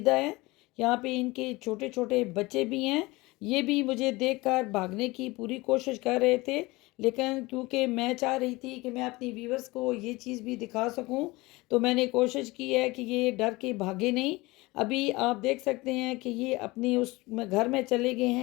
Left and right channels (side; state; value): right; quieter; 22.0 dB